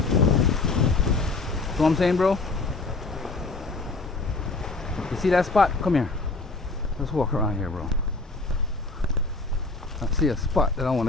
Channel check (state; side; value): quieter; right; 3.6 dB